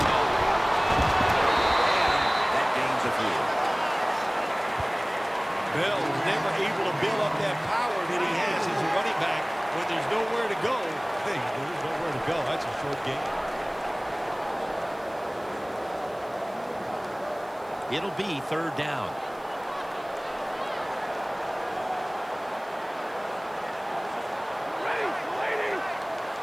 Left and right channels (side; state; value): right; noise; hiss, 28 dB below the sound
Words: And that gains a few. Bell was never able to build up that power that he has as a running back when there's nowhere to go. Hey, there's nowhere to go. That's a short game. It'll be 3rd down.